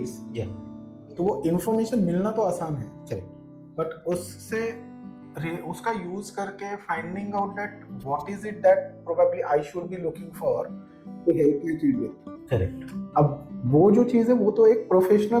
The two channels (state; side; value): identical; both; correlation 1.00